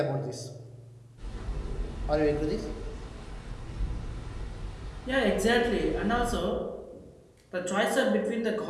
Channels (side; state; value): both; identical; correlation 1.00